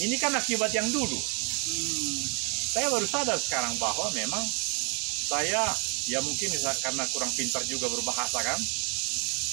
kan akibat yang dulu. Saya baru sadar sekarang bahwa memang saya ya mungkin karena kurang pintar juga berbahasa kan,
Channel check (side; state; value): left; quieter; 33.0 dB